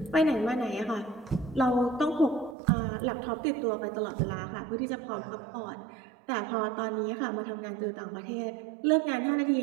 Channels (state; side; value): drops out; left; at 2.6 s